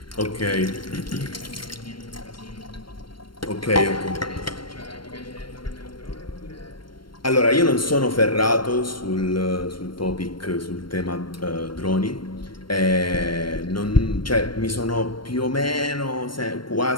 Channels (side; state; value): right; late; 0.72 ms